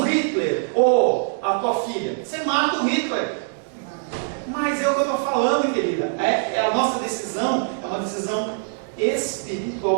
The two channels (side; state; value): left; silent; digital silence